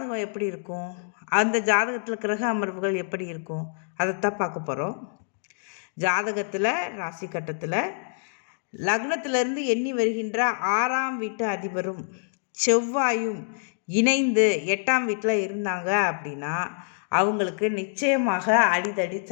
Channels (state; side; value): silent; right; digital silence